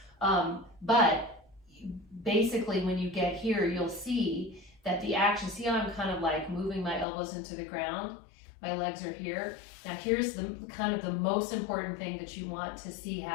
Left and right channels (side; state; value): right; drops out; at 7.1 s